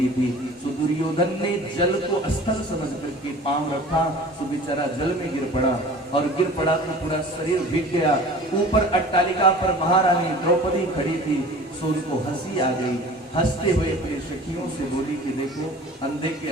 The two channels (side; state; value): both; normal; correlation 0.43